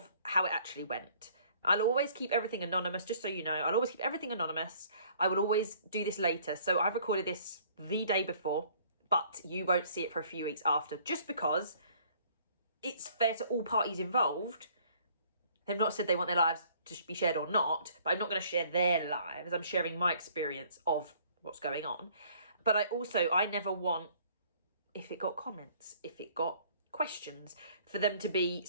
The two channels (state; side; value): inverted; both; correlation -0.58